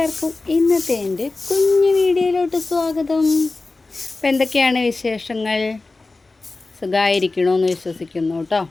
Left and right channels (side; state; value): right; quieter; 3.4 dB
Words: ഇന്നത്തെ എൻ്റെ കുഞ്ഞു വീഡിയോയിലോട്ട് സ്വാഗതം. അപ്പം എന്തൊക്കെയാണ് വിശേഷങ്ങൾ? സുഖമായിരിക്കണമെന്ന് വിശ്വസിക്കുന്നു കേട്ടോ.